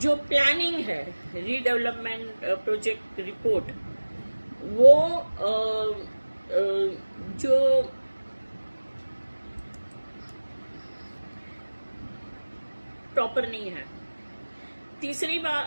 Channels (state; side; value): inverted; both; correlation -1.00